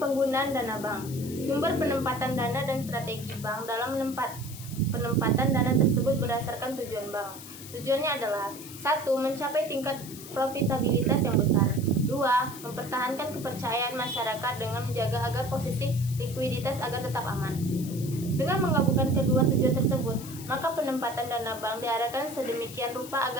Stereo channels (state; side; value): noise; left; hiss, 14 dB below the sound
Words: dana bank, sumber penempatan dana dan strategi bank dalam penempatan dana tersebut berdasarkan tujuan bank. Tujuannya adalah 1. Mencapai tingkat profitabilitas yang besar. 2. Mempertahankan kepercayaan masyarakat dengan menjaga agar posisi likuiditas agar tetap aman. Dengan menggabungkan kedua tujuan tersebut, maka penempatan dana bank diarahkan sedemikian rupa